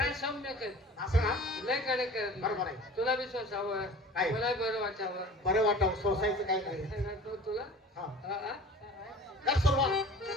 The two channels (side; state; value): both; normal; correlation 0.43